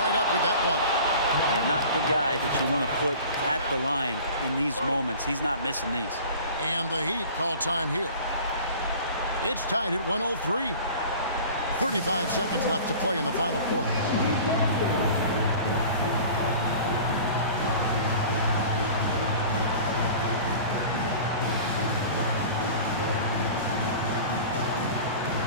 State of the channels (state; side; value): inverted; both; correlation -0.42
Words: up with that one. And not the guy that you want to put at the line in these moments. He's not missing these. And the Heat call time here. It's tied at 103. 35 seconds left to play in the final quarter.